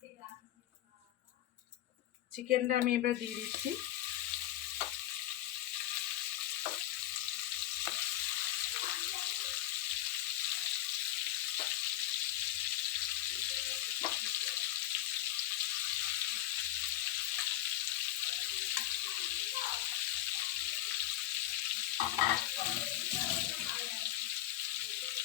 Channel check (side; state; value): right; quieter; 14.2 dB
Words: চিকেনটা আমি এবার দিয়ে দিচ্ছি।